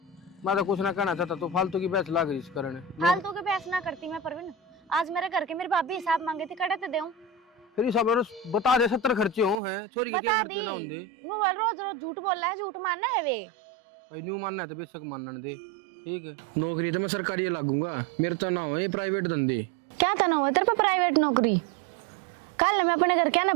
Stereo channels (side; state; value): left; drops out; at 9.6 s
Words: मैं तो कुछ ना कहना चाहता, तो फालतू की बहस लाग रही इस कारण। फालतू के बहस ना करती मैं परवीन, आज मेरे घर के मेरी भाभी हिसाब मांगे थी, कड़े तो देऊं। फिर ये सब बता दे, 70 खर्चे हो हैं, छोरी के क्या बता खर्चे दी। ना होंगे। वो रोज रोज झूठ बोल रहा है, झूठ मानना है वे। भाई न्यू मानना है तो बेशक मानने दे, ठीक है। नौकरी तो मैं सरकारी लागूंगा, मेरे तो ना हो ये प्राइवेट धंधे। क्या करना हुआ तेरे पे प्राइवेट नौकरी? कल मैं अपने घर क्या ना